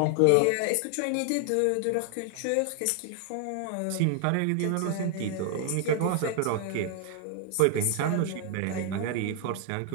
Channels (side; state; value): both; different; correlation 0.00